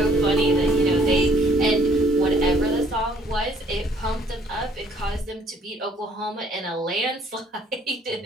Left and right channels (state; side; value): normal; both; correlation 0.60